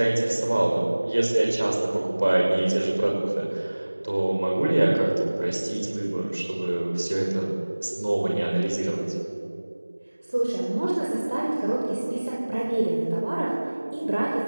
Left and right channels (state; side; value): inverted; both; correlation -1.00